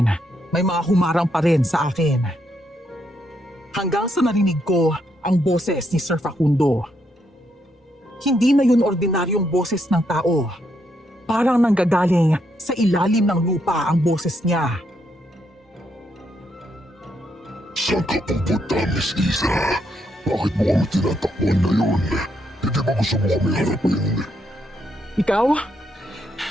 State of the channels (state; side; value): normal; both; correlation 0.77